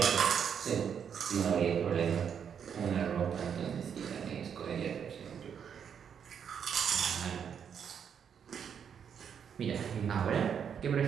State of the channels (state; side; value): quieter; left; 7.7 dB